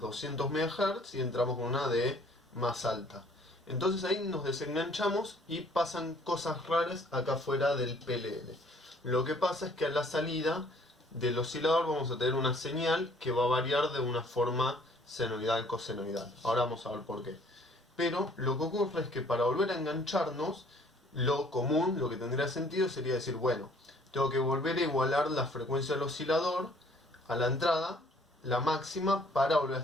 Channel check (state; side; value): normal; both; correlation 0.58